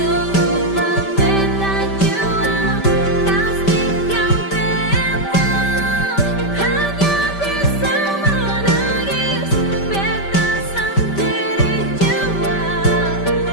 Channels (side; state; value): right; late; 5.1 ms